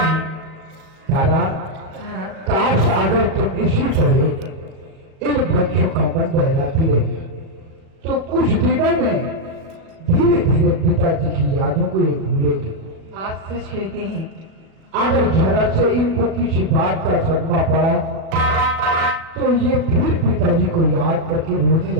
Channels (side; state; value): left; late; 37 ms